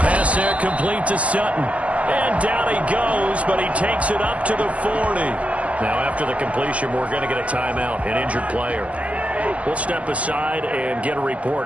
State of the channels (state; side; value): late; left; 0.068 ms